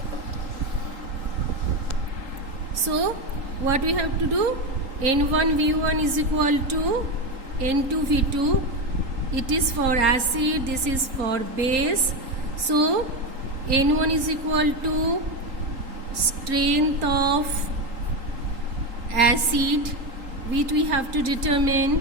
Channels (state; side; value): late; left; 3.8 ms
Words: So what we have to do, N1V1 is equal to N2V2. It is for acid, this is for base. So N1 is equal to strength of acid which we have to